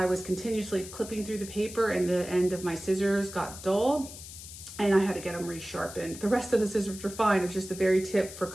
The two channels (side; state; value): left; noise; hiss, 13 dB below the sound